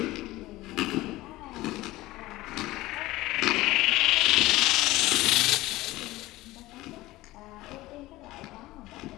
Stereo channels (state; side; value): quieter; right; 18.2 dB